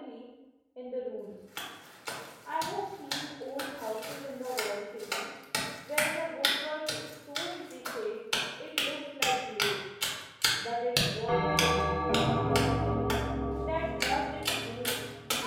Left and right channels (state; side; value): identical; both; correlation 1.00